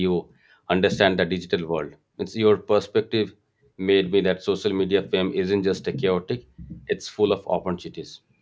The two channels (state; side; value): identical; both; correlation 1.00